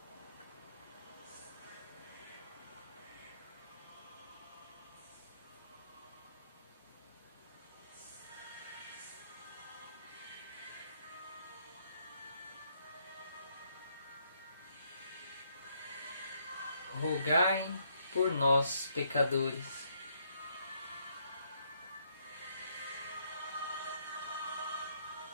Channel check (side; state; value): both; inverted; correlation -0.72